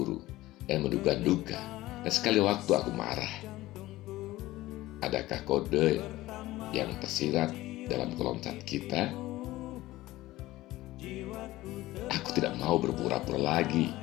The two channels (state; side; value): quieter; right; 17.2 dB